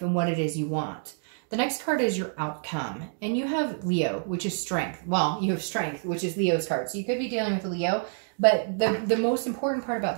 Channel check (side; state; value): left; silent; digital silence